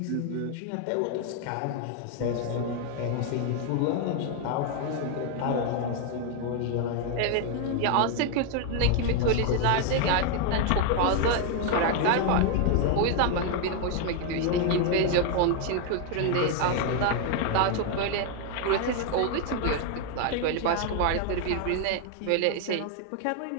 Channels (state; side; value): different; both; correlation 0.01